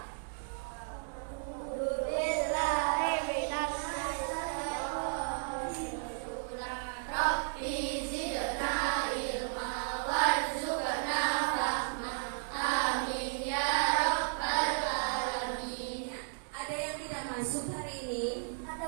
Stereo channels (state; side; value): silent; left; digital silence